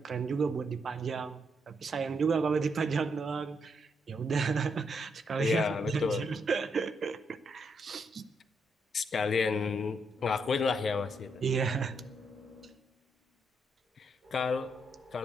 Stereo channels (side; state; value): both; normal; correlation 0.78